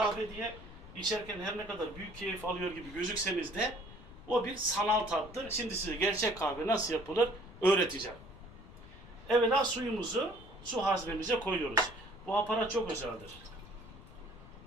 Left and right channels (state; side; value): noise; left; rumble, 19 dB below the sound